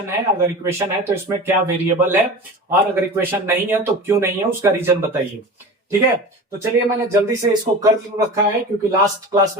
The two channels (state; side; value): normal; both; correlation 0.33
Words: है, अगर इक्वेशन है तो इसमें क्या वेरिएबल है, और अगर इक्वेशन नहीं है तो क्यों नहीं है, उसका रीजन बताइए। ठीक है, तो चलिए मैंने जल्दी से इसको कर रखा है क्योंकि लास्ट क्लास